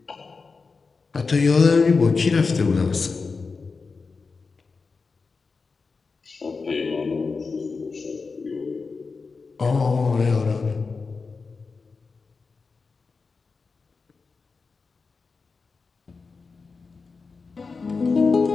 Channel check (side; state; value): right; quieter; 4.5 dB